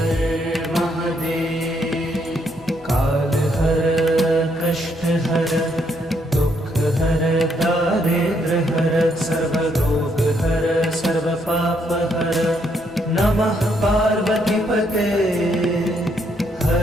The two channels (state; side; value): normal; both; correlation 0.73